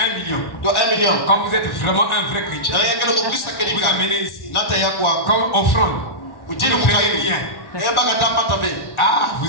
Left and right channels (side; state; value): right; late; 1.4 ms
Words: million. Quand vous êtes vraiment un vrai chrétien, vous amenez ici comme offrande. Vous ne payez rien. Ah,